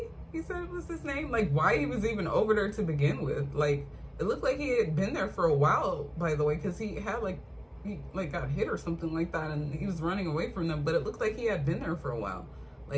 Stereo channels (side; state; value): both; identical; correlation 1.00